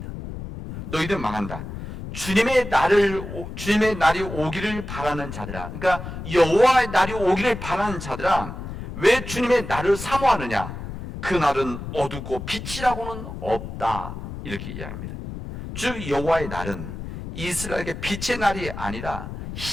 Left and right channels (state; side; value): noise; left; rumble, 9 dB below the sound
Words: 너희들은 망한다. 주님의 날이 오기를 바라는 자들아, 그러니까 여호와의 날이 오기를 바라는 자들아, 왜 주님의 날을 사모하느냐? 그 날은 어둡고 빛이라고는 없다, 이렇게 이야기합니다. 즉 여호와의 날은 이스라엘에게 빛의 날이 아니라,